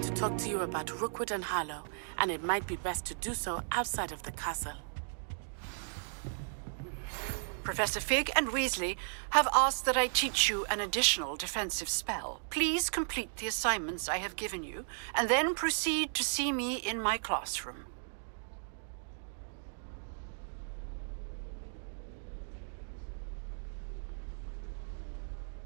to talk to you about Rookwood and Harlow, and it might be best to do so outside of the castle. Professor Fig and Weasley have asked that I teach you an additional defensive spell. Please complete the assignments I have given you, and then proceed to see me in my classroom.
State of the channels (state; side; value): silent; left; digital silence